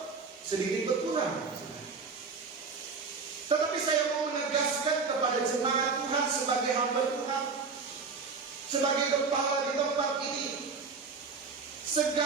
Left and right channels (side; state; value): left; quieter; 4.8 dB